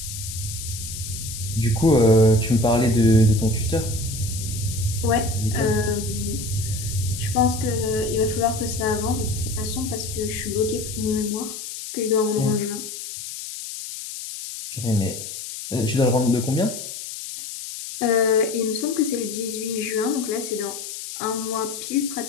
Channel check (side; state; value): left; noise; hiss, 9 dB below the sound